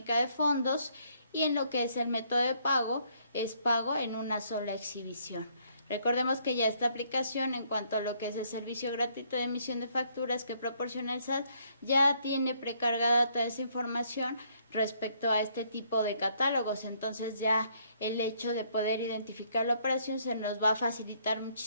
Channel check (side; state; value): both; inverted; correlation -0.68